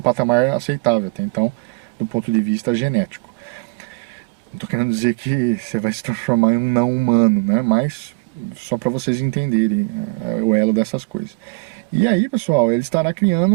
aceitável, até então, do ponto de vista genético. Não estou querendo dizer que você vai se transformar em um não humano, né? Mas só para vocês entenderem o elo dessas coisas. E aí, pessoal, ele estará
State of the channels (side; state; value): left; quieter; 28.9 dB